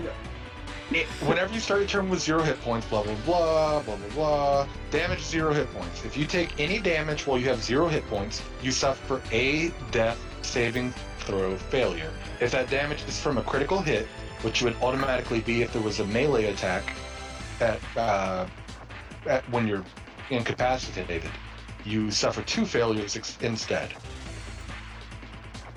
Whenever you start your turn with 0 hit points, blah blah blah, blah blah blah. Damage 0 hit points. If you take any damage while you have 0 hit points, you suffer a death saving throw failure. If that damage is from a critical hit, which would automatically be if there was a melee attack at when you're incapacitated, you suffer 2 failures instead.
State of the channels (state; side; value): identical; both; correlation 1.00